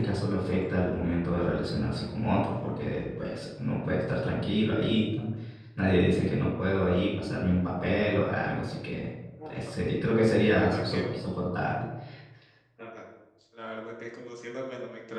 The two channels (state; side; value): identical; both; correlation 1.00